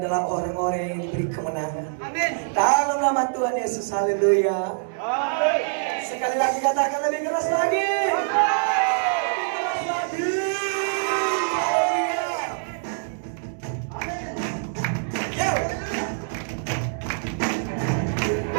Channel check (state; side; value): silent; left; digital silence